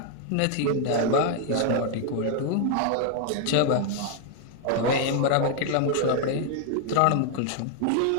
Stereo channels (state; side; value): different; both; correlation 0.00